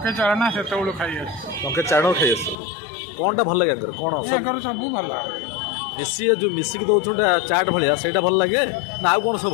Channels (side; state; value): right; drops out; at 2.6 s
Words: चाणा से खाई टंके चाण खाई आस कौनटा भल लगे कौन सब भल मिसी जो मिसिक दौन चाट भाया से भल लगे ना आउ कौन सब